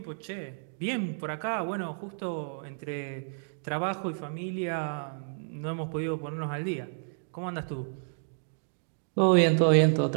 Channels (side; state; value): left; silent; digital silence